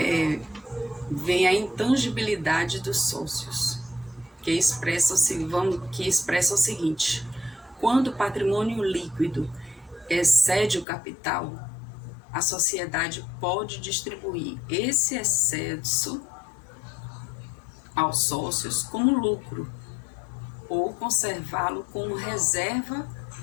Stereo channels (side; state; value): right; drops out; at 10.9 s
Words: vem a intangibilidade dos sócios, que expressa o seguinte: quando o patrimônio líquido excede o capital, a sociedade pode distribuir esse excesso aos sócios como lucro, ou conservá-lo como reserva